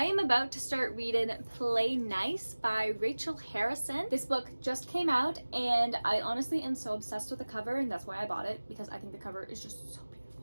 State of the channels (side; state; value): both; inverted; correlation -1.00